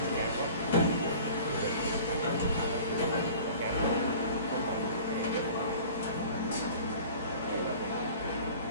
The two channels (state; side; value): inverted; both; correlation -0.44